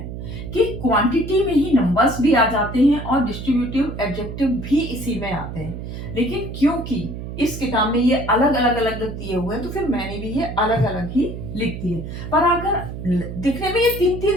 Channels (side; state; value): right; noise; hum, 8 dB below the sound